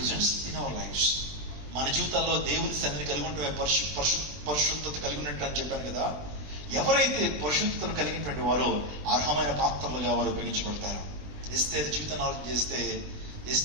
in our lives. మన జీవితాల్లో దేవుని సన్నిధిని కలిగి ఉంటే పరిశుద్ధత కలిగి ఉన్నట్టు అని చెప్పాను కదా. ఎవరైతే పరిశుద్ధతను కలిగినటువంటి వారో అర్హమైన పాత్రలుగా వారు ఉపయోగించబడతారు. ఎస్తేరు జీవితాన్ని ఆలోచన చేస్తే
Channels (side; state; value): left; late; 20 ms